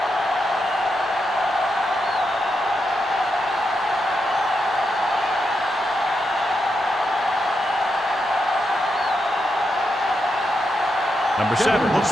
Number 7 looks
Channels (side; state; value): both; normal; correlation 0.84